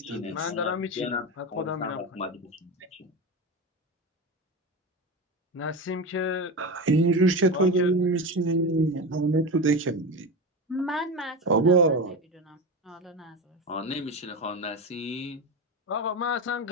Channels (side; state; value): both; normal; correlation 0.21